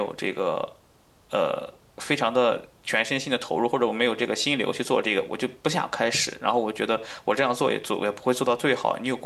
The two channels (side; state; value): both; identical; correlation 1.00